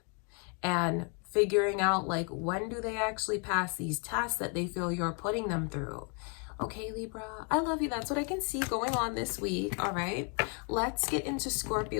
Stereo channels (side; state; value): right; quieter; 38.3 dB